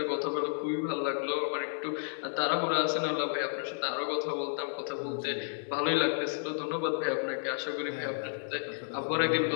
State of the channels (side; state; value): right; silent; digital silence